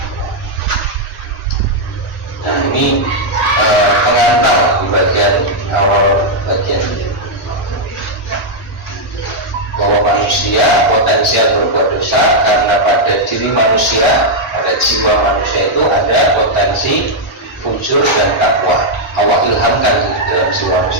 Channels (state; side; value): normal; both; correlation -0.03